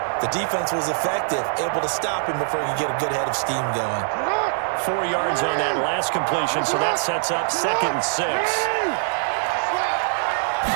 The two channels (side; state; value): left; silent; digital silence